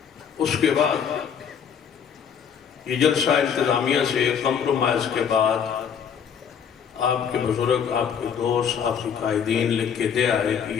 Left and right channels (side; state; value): right; quieter; 7.6 dB